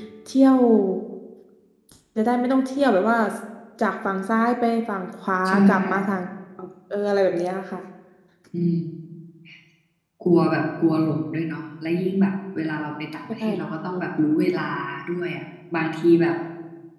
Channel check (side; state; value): both; identical; correlation 1.00